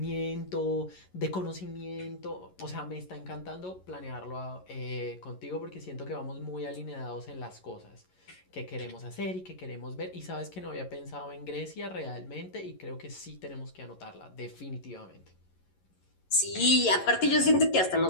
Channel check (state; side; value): late; right; 11 ms